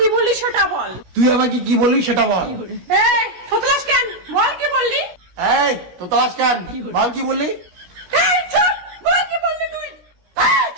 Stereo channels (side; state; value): left; late; 17 ms